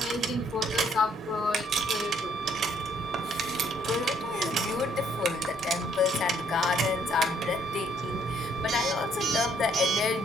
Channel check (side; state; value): both; normal; correlation 0.67